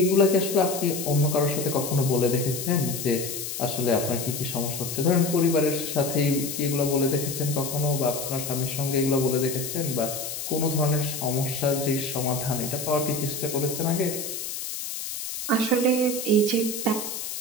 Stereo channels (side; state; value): left; noise; hiss, 6 dB below the sound